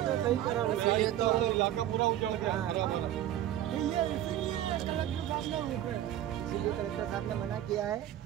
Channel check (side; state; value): left; quieter; 12.3 dB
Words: तो सही करा रहे हैं। तो इलाका पूरा उजड़ गया, खराब हो रहा। इसीलिए कलेक्टर साहब ने मना किया है